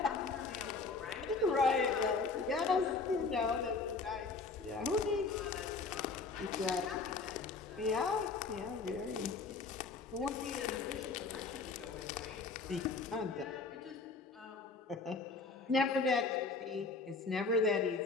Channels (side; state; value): right; quieter; 4.2 dB